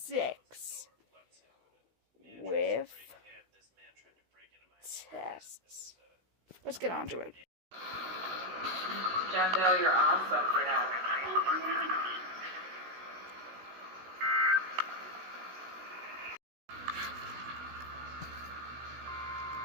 With tests. Let's get on to it. Jandel, you're awesome for now.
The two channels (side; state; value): left; late; 16 ms